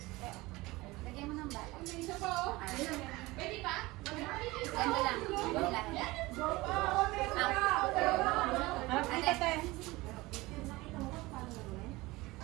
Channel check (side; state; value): left; quieter; 20.9 dB